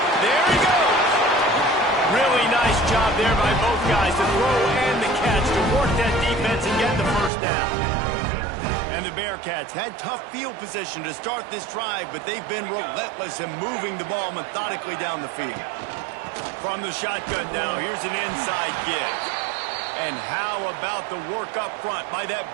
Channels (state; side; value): drops out; left; at 7.3 s